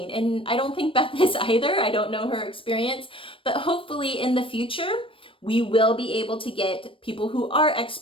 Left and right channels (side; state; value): right; late; 0.25 ms